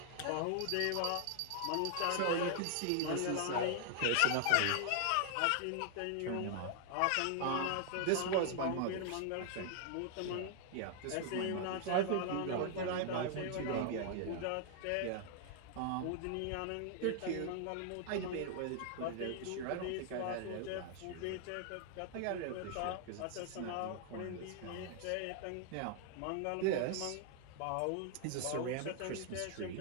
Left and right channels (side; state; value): both; different; correlation 0.00